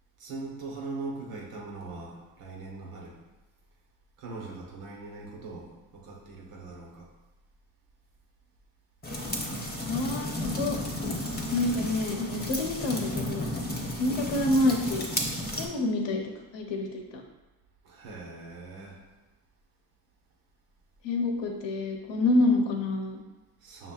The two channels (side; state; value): both; normal; correlation 0.42